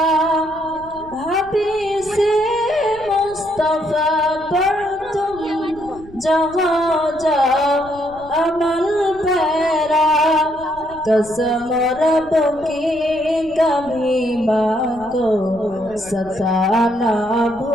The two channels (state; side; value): noise; left; rumble, 22 dB below the sound